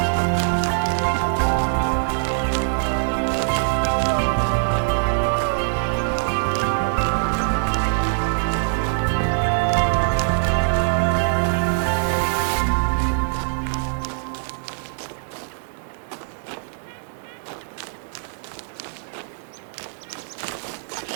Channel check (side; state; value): left; silent; digital silence